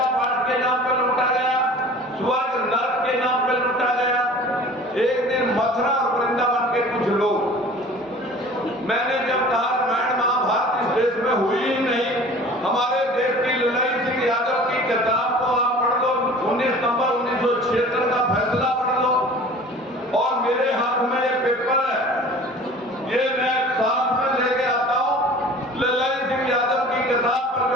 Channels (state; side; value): normal; both; correlation 0.44